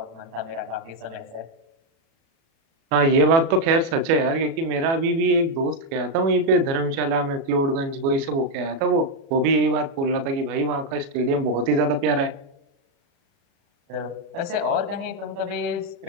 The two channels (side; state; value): left; late; 36 ms